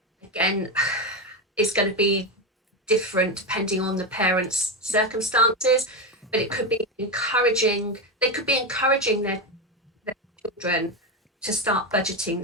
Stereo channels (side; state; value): both; normal; correlation 0.12